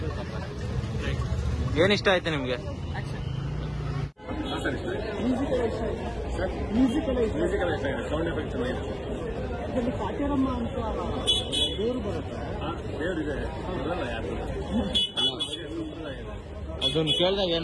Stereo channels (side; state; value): both; identical; correlation 1.00